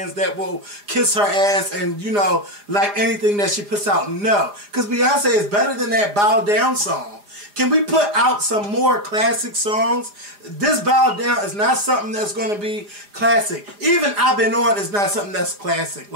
that will kiss her ass and, you know, like anything that she puts out. No. Because Beyonce is better than that bow down song. Can we put out some more classic songs? This Bow Down is not something that's going to be classic. Even I've Been On is not something that's classic.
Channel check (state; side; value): late; left; 4.9 ms